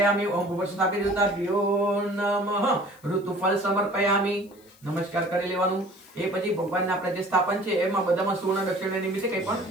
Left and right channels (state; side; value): noise; left; hiss, 28 dB below the sound